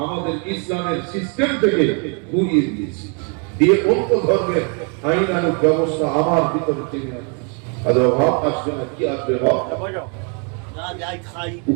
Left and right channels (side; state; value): left; quieter; 37.4 dB